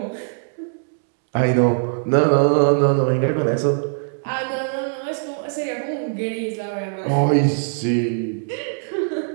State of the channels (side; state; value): left; silent; digital silence